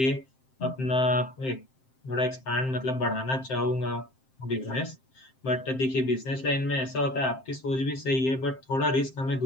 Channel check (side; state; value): right; late; 7.6 ms